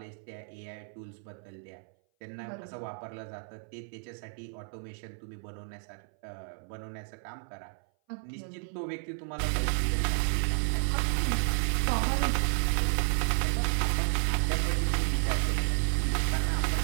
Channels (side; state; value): left; silent; 57 dB below the other